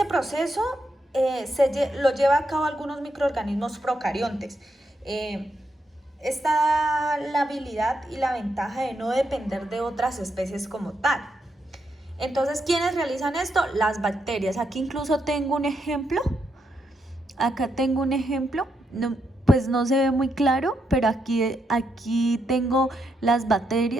proceso lo lleva a cabo algunos microorganismos procariontes. Esta la habilidad y la ventaja de no depender de otras especies como tal. Entonces, ¿quiénes realizan esto? Las bacterias. Aquí incluso tengo un ejemplo. Acá tengo un ejemplo. No, pues no se ve muy claro, pero aquí tengo las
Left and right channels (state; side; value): normal; both; correlation 0.81